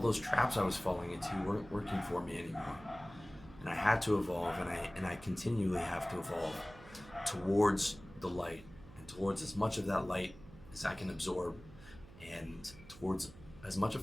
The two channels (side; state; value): right; noise; hum, 19 dB below the sound